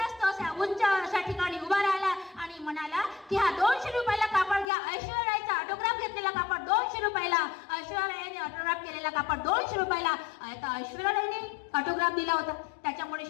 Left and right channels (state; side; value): drops out; right; at 4.7 s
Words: तो अशा उंच अशा ठिकाणी उभा राहिला आणि म्हणाला की हा 200 रुपयाला कापड घ्या. ऐश्वर्या रायचा ऑटोग्राफ घेतलेला कापड 200 रुपयाला, ऐश्वर्या रायने ऑटोग्राफ केलेला कापड 200 रुपयाला. आता ऐश्वर्या रायने ऑटोग्राफ दिला होता, त्याच्यामुळे